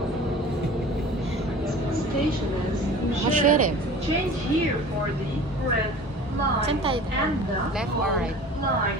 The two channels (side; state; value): both; normal; correlation 0.41